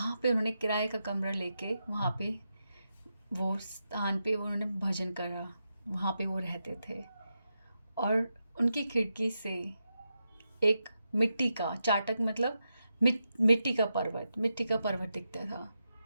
पे उन्होंने किराए का कमरा लेके वहाँ पे वो स्थान पे उन्होंने भजन करा, वहाँ पे वो रहते थे। और उनकी खिड़की से एक मिट्टी का चाटक, मतलब मिट्टी का पर्वत दिखता था।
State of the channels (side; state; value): both; inverted; correlation -0.87